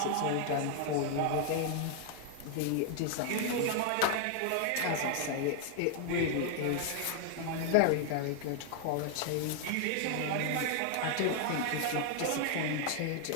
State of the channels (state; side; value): different; both; correlation 0.00